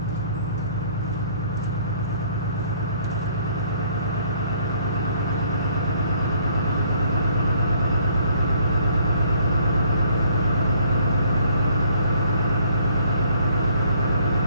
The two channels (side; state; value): both; inverted; correlation -0.62